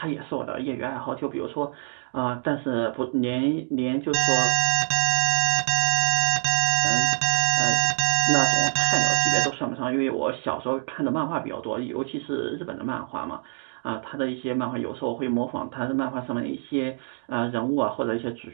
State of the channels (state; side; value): silent; left; 62 dB below the other